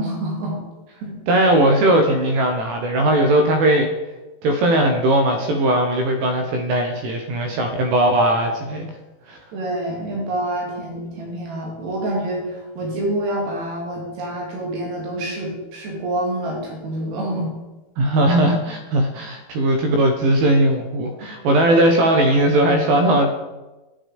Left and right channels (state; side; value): late; left; 18 ms